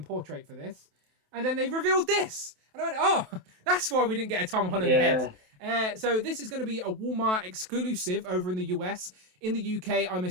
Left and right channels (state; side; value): late; left; 27 ms